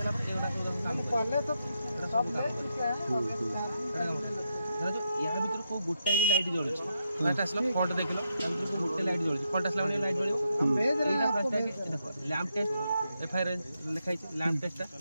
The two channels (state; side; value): inverted; both; correlation -0.81